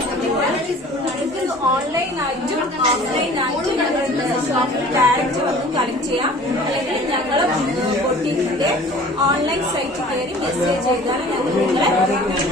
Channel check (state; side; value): normal; both; correlation 0.47